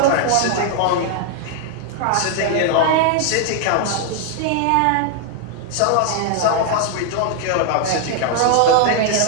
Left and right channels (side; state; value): both; different; correlation 0.00